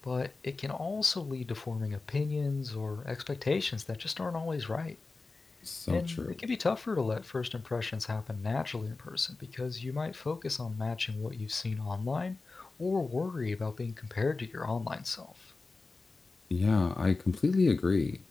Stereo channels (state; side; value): quieter; right; 3.7 dB